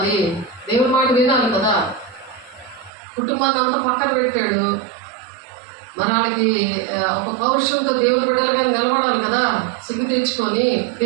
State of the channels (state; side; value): drops out; left; at 2.9 s